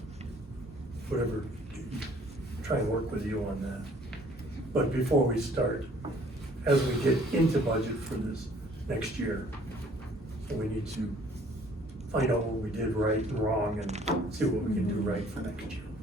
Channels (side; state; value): both; normal; correlation 0.57